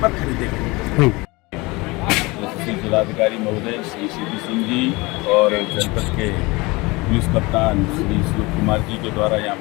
पर खरीदेंगे। जिलाधिकारी महोदय श्री CP सिंह जी और जनपद के पुलिस कप्तान श्री श्लोक कुमार जी के द्वारा यहाँ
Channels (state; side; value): quieter; right; 23.9 dB